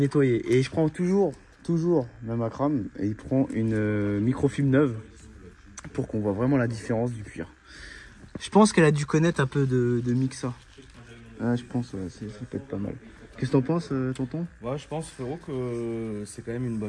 Et je prends toujours, même Akram, et il prend une microfibre neuve pour qu'on voit vraiment la différence du cuir. Je pense qu'elle a dû connaître un peu de Mixa. Ah, je pense, ouais, ça peut être pas mal. Qu'est-ce que t'en penses, tonton? Ouais, je pense, frérot, que c'est quand même une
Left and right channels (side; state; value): both; identical; correlation 1.00